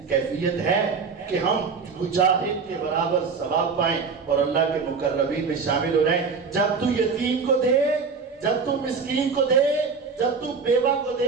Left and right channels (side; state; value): left; quieter; 5.1 dB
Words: کیفیت ہے کہ ہم مجاہد کے برابر ثواب پائیں اور اللہ کے مقربین میں شامل ہو رہے؟ جب تو یتیم کو دے, جب تو مسکین کو دے, جب تو بیوہ کو